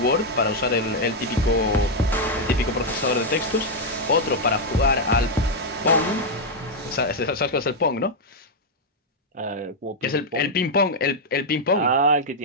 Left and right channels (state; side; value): normal; both; correlation -0.01